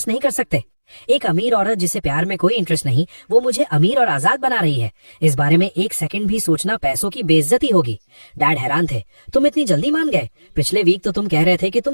नहीं कर सकते? एक अमीर औरत जिसे प्यार में कोई इंटरेस्ट नहीं, वो मुझे अमीर और आजाद बना रही है। इस बारे में एक सेकंड भी सोचना पैसों की बेइज्जती होगी। डैड हैरान थे, तुम इतनी जल्दी मान गए? पिछले वीक तो तुम कह रहे थे कि तुम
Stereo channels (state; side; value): inverted; both; correlation -1.00